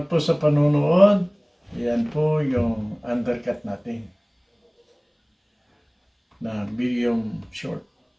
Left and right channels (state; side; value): identical; both; correlation 1.00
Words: po sa panunood. Yan po yung undercut natin na medium short